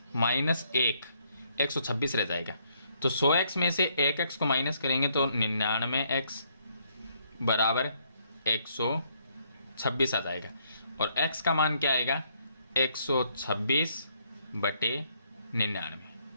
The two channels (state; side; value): inverted; both; correlation -0.70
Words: माइनस 1 126 रह जाएगा। तो 100x में से 1x को माइनस करेंगे तो 99x बराबर 126 आ जाएगा, और x का मान क्या आएगा? 126/99।